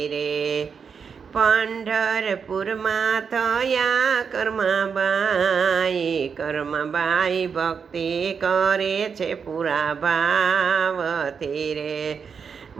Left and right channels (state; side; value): quieter; left; 6.2 dB